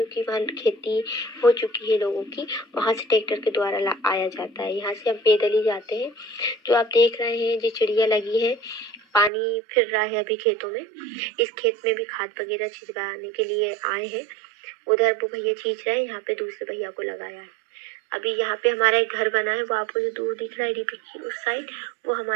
वहाँ खेती हो चुकी है लोगों की। वहाँ से ट्रैक्टर के द्वारा आया जाता है, यहाँ से हम पैदल ही जाते हैं। जो आप देख रहे हैं जो चिड़िया लगी है, पानी फिर रहा है अभी खेतों में। इस खेत में भी खाद वगैरह छिड़काने के लिए आए हैं। उधर वो भैया छींच रहे हैं, यहाँ पे दूसरे भैया को लगाया है। अभी यहाँ पे हमारा एक घर बना है, वो आपको जो दूर दिख रहा है डीपी की उस साइड, वो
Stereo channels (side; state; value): left; drops out; at 9.3 s